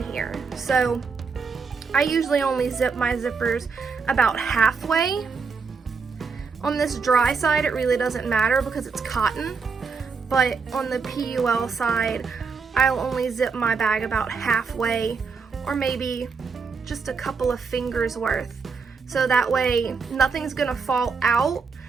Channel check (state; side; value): quieter; left; 5.1 dB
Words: here. So I usually only zip my zippers about halfway. On this dry side, it really doesn't matter because it's cotton, but on the PUL side, I'll only zip my bag about halfway, or maybe just a couple of fingers worth. So that way nothing's gonna fall out,